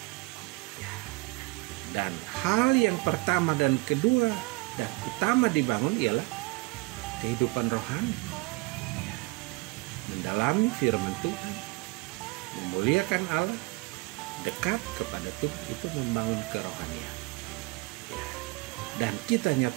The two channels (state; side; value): quieter; left; 25.0 dB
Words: Ya. Dan hal yang pertama dan kedua dan utama dibangun ialah kehidupan rohani. Ya. Mendalami firman Tuhan, memuliakan Allah, dekat kepada Tuhan, itu membangun kerohanian. Ya. Dan kita